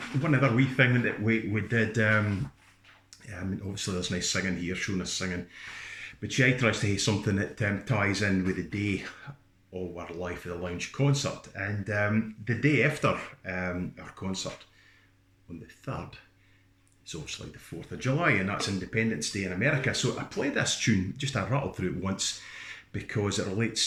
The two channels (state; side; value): identical; both; correlation 1.00